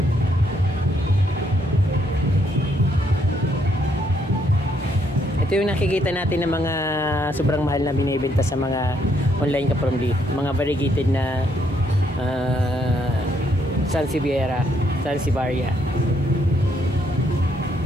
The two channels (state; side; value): normal; both; correlation 0.72